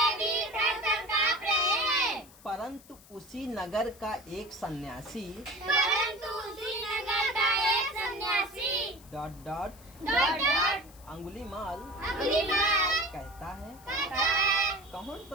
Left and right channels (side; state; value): left; noise; hiss, 23 dB below the sound